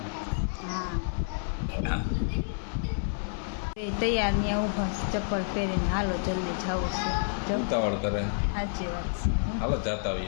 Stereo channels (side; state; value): right; silent; 56 dB below the other